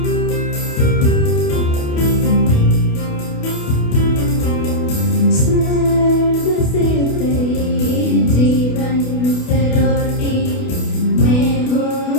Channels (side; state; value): right; late; 28 ms